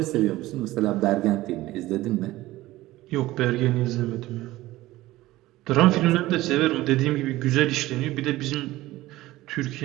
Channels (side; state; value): left; quieter; 17.3 dB